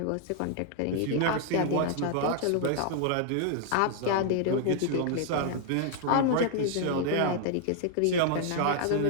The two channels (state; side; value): different; both; correlation 0.00